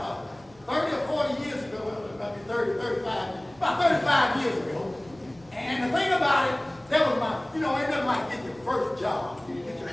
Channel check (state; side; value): noise; right; rumble, 28 dB below the sound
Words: 30 or 40 years ago. Well, it might be 30, 35, about 35 years ago. And the thing about it, that was my, you know, ain't nothing like getting your first job. You get your